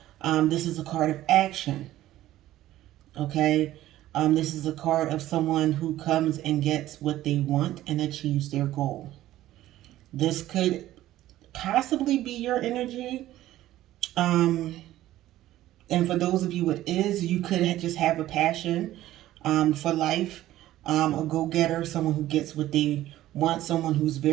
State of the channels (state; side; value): quieter; left; 14.5 dB